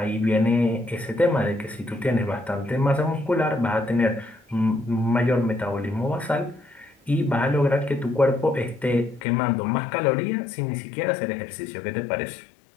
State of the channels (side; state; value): right; drops out; at 9.2 s